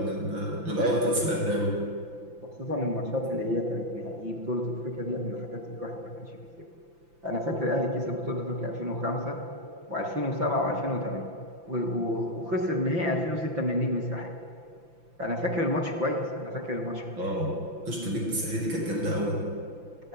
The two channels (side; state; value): left; late; 5.9 ms